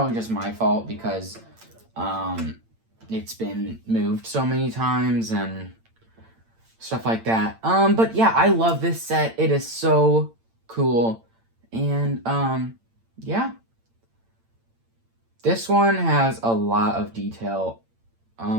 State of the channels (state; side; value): late; left; 8.8 ms